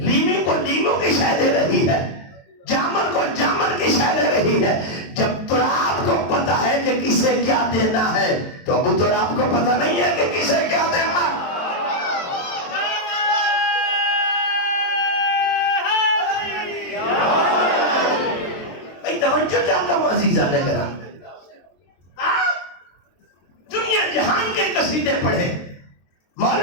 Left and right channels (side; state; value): right; late; 23 ms